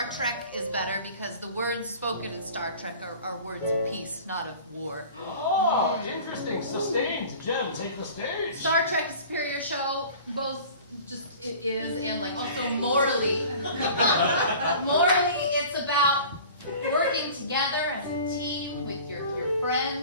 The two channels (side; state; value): both; inverted; correlation -0.43